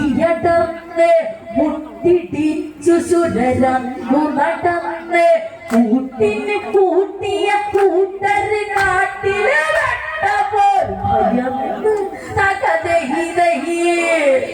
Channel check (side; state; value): both; identical; correlation 1.00